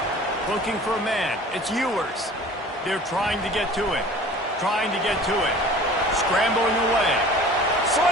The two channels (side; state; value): both; normal; correlation 0.45